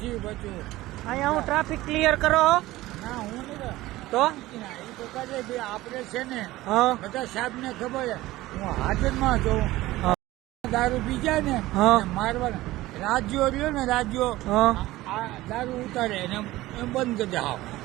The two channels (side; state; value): left; quieter; 17.5 dB